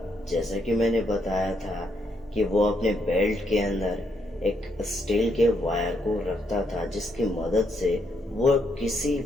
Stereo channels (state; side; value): normal; both; correlation 0.76